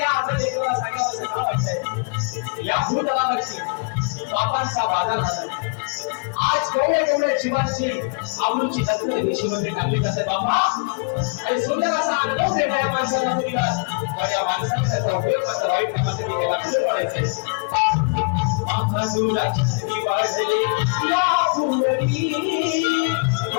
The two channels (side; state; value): right; quieter; 34.1 dB